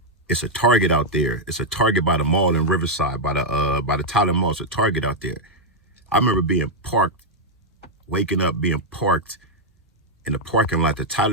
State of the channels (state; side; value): normal; both; correlation -0.02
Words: It's a Target out there. It's a Target by the mall in Riverside, by the Tyler Mall. It's a Target out there. I remember being parked, waking up, being parked in the parking lot, that